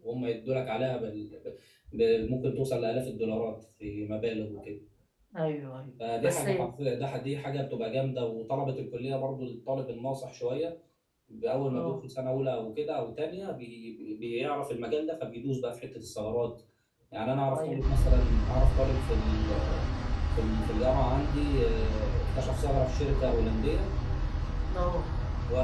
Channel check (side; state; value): both; identical; correlation 1.00